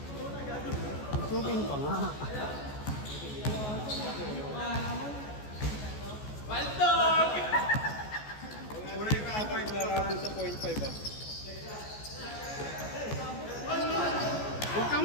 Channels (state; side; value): late; right; 14 ms